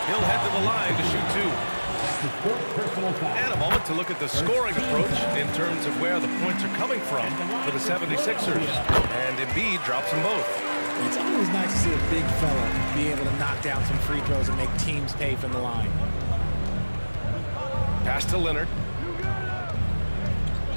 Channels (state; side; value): inverted; both; correlation -1.00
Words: He'll head to the line to shoot two. And a moment to look at the scoring approach in terms of where the points are coming from for the 76ers. And Embiid drops them both. It's always nice to see a big fella be able to knock down some free throws and make teams pay from the line. Pass to Leonard.